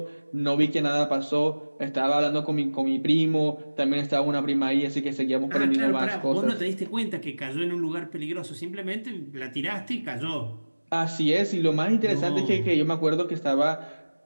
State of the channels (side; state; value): both; inverted; correlation -1.00